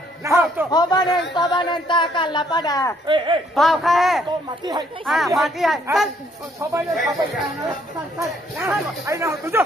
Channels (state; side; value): normal; both; correlation 0.67